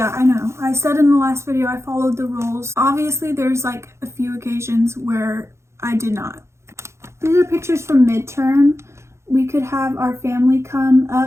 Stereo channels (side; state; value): left; late; 0.13 ms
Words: I know. I said in the last video I followed the rules. Obviously, there's like a few occasions where I did not. These are pictures from midterm. We could have our family come